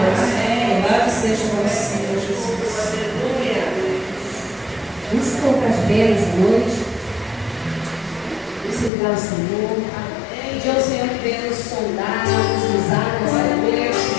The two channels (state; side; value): drops out; right; at 8.9 s